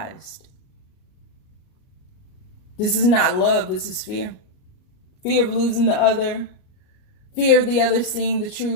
This is not love. This is fear. Fear of losing the other. Fear of the other seeing the true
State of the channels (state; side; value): late; right; 38 ms